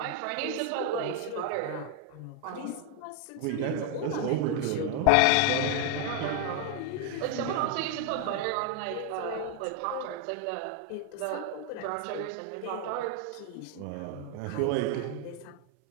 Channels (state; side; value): different; both; correlation 0.00